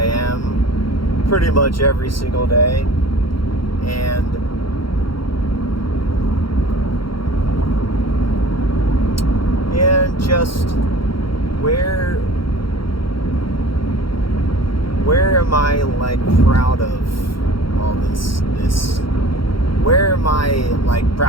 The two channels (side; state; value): right; late; 0.73 ms